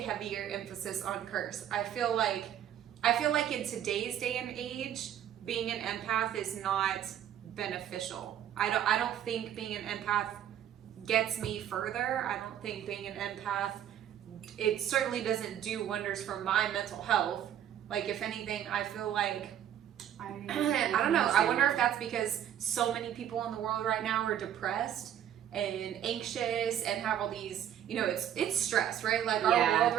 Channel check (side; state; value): left; quieter; 10.4 dB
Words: heavier emphasis on curse. I feel like in today's day and age, being an empath is not beneficial. I don't think being an empath gets me further. I don't think being an empath, it certainly doesn't do wonders for my mental health. Like, if anything, I feel like I don't know. I wonder if that's because so many people in the world right now are depressed and anxious and have all these, it's stress, right? Like our world